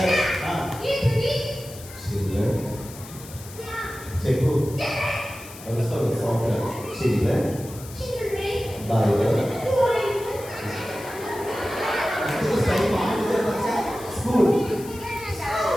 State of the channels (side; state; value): left; noise; hiss, 17 dB below the sound